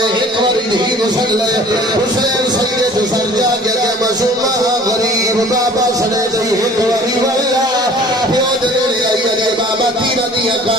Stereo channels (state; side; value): normal; both; correlation 0.49